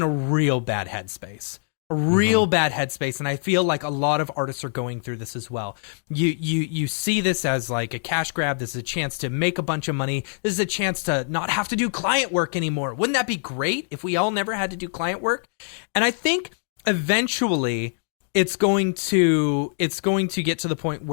a real bad headspace. And I feel like a lot of artists are going through this as well. You see this as like a cash grab. This is a chance to make a bunch of money. This is a chance to not have to do client work anymore. Wouldn't that be great if we all never had to do client work? And I think eventually it's going to get to the point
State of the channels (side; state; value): right; silent; digital silence